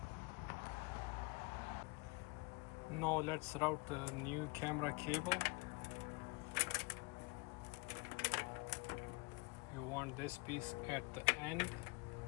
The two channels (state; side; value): quieter; right; 27.0 dB